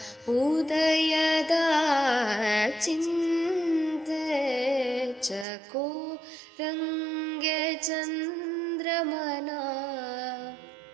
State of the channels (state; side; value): drops out; left; at 5.5 s